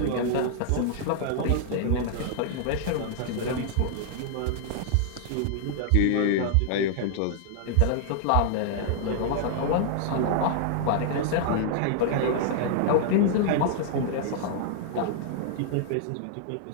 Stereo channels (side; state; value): both; different; correlation -0.01